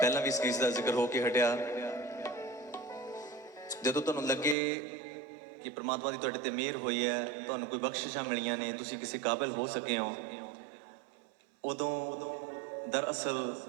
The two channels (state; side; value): drops out; left; at 4.5 s